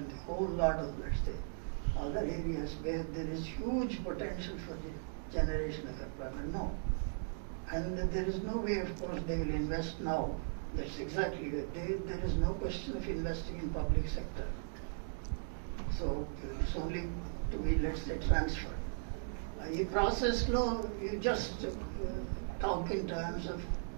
a whole lot of, let's say, other areas where there is huge potential for the generation of employment. No. And there is no way, of course, they will invest now. That's exactly it. There is no question of investing in public sector. So it's only to be, let's say, transferred. ఈ ప్రాసెస్లో you just talk in terms of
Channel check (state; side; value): silent; left; digital silence